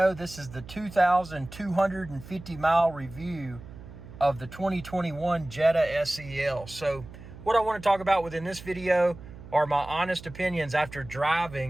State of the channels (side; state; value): right; noise; hum, 16 dB below the sound